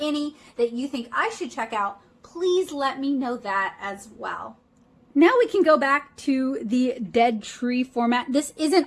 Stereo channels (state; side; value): identical; both; correlation 1.00